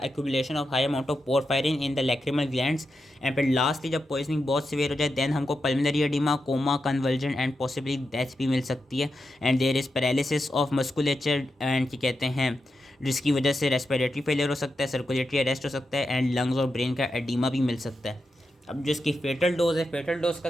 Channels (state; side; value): normal; both; correlation 0.88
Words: accumulation of high amount of porphyrin in the lacrimal glands. And फिर लास्टली जब पॉइजनिंग बहुत सिवियर हो जाए देन हमको pulmonary oedema, coma, convulsion and possibly death भी मिल सकती है। And there is paralysis of musculature and क्या कहते हैं, जिसकी वजह से रेस्पिरेटरी फेलियर हो सकता है, सर्कुलेटरी अरेस्ट हो सकता है एंड लंग्स और ब्रेन का एडिमा भी मिल सकता है। अब जो इसकी फेटल डोज है, फेटल डोज का